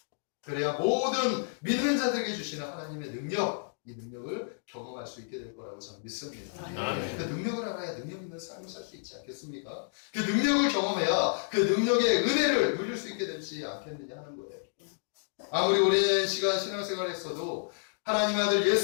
그래야 모든 믿는 자들에게 주시는 하나님의 능력, 이 능력을 경험할 수 있게 될 거라고 저는 믿습니다. 아멘. 그 능력을 알아야 능력 있는 삶을 살 수 있지 않겠습니까? 그 능력을 경험해야 그 능력의 은혜를 누릴 수 있게 되지 않겠느냐 하는 거예요. 아무리 오랜 시간 신앙생활을 했어도 하나님 아들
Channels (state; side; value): silent; right; digital silence